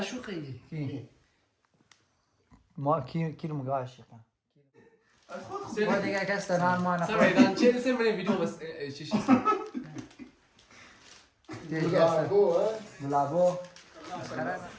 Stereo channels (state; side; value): identical; both; correlation 1.00